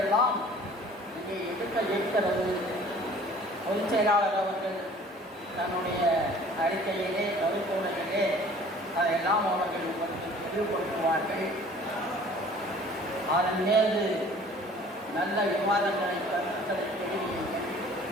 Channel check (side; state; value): both; normal; correlation 0.50